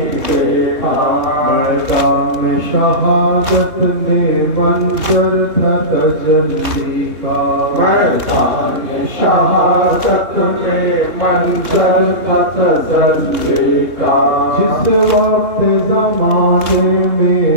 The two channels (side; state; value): left; late; 3.2 ms